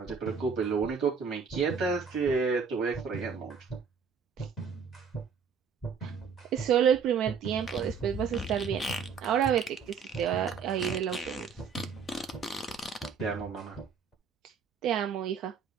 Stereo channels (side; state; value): left; quieter; 6.2 dB